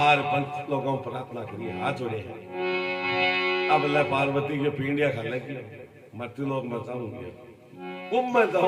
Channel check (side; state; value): both; identical; correlation 1.00